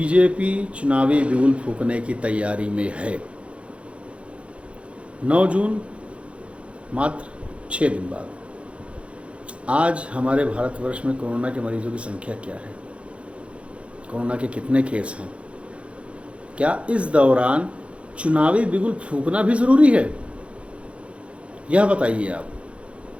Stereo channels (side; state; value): left; late; 0.061 ms